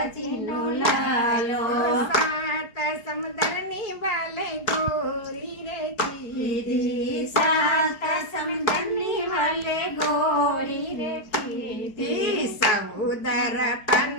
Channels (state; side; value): late; right; 4.7 ms